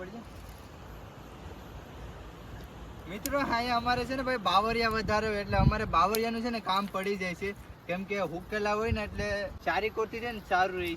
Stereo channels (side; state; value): both; identical; correlation 1.00